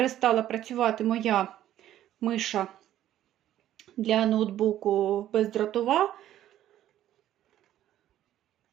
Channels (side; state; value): left; quieter; 12.4 dB